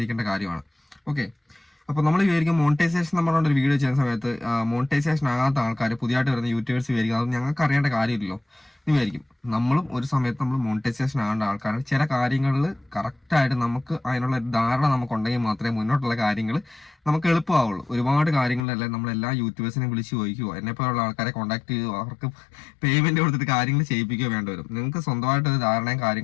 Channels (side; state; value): right; drops out; at 18.6 s